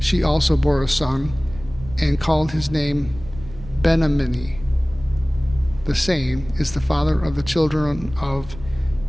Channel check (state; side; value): noise; right; rumble, 16 dB below the sound